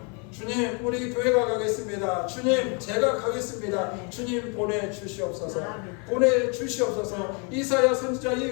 주님, 우리 교회가 가겠습니다. 주님, 제가 가겠습니다. 주님, 보내주시옵소서. 보내주시옵소서. 이사야 선지자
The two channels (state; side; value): quieter; right; 35.1 dB